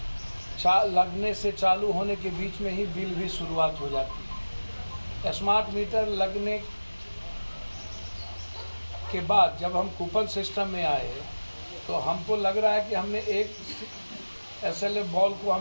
लगने से चालू होने के बीच में ही बिल भी शुरुआत हो जाती है। स्मार्ट मीटर लगने के बाद जब हम कूपन सिस्टम में आए, तो हमको लग रहा है कि हमने एक SLF बॉल को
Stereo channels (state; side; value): inverted; both; correlation -1.00